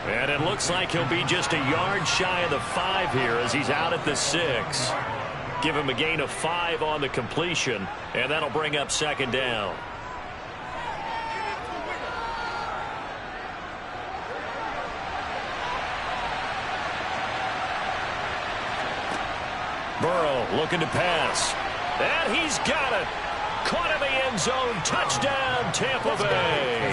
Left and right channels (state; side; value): identical; both; correlation 1.00